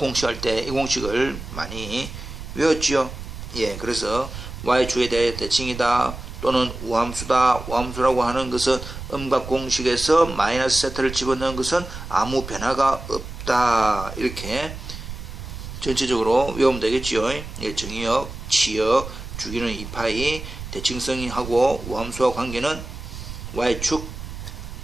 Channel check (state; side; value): noise; right; rumble, 10 dB below the sound